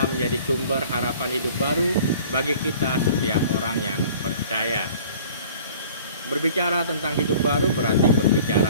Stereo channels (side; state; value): both; inverted; correlation -0.48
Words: menjadi sumber harapan hidup baru bagi kita setiap orang yang percaya. Berbicara tentang hidup baru berarti